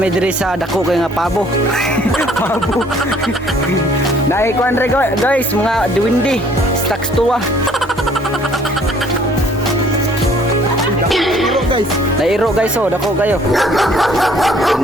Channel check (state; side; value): normal; both; correlation 0.59